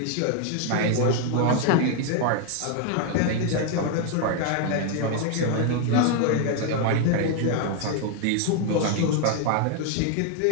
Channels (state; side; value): different; both; correlation 0.01